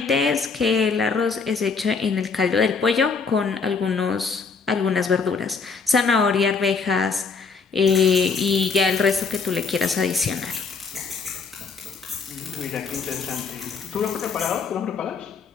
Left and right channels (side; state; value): right; quieter; 5.0 dB